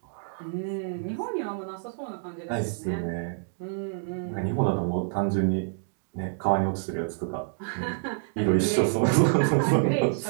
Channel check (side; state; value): left; silent; digital silence